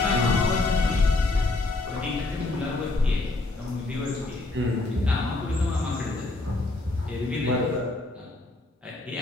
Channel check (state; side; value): quieter; right; 3.0 dB